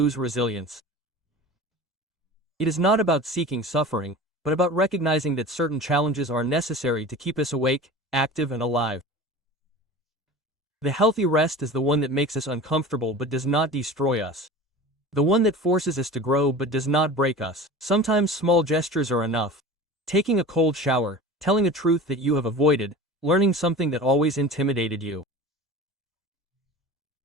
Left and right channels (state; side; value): normal; both; correlation 0.36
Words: resilience. It is not about seeking suffering, but about recognizing that certain challenges are necessary to keep us awake, active and alive. The healthy rest is the one that makes us uncomfortable but does not destroy us. The one that forces us to grow but does not break us. Sometimes small gestures are enough. Taking a cold shower, telling a truth that you have avoided, learning something that always intimidated you.